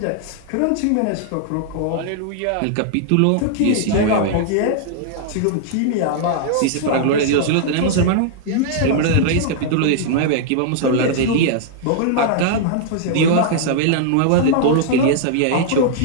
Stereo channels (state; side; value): different; both; correlation -0.01